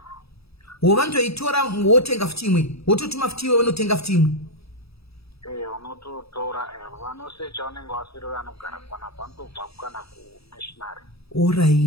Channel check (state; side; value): late; right; 0.77 ms